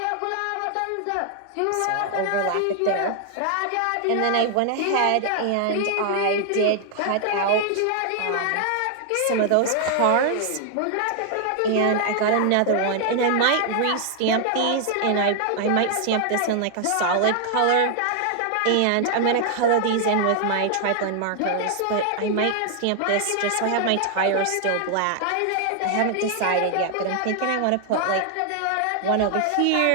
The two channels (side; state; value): both; different; correlation 0.00